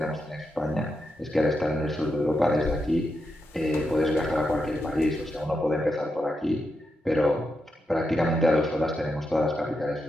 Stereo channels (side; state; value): both; normal; correlation 0.85